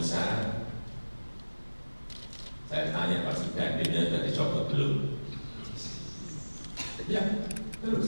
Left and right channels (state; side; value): inverted; both; correlation -1.00